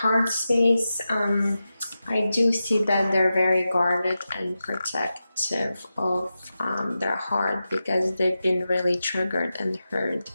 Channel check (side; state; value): both; inverted; correlation -0.92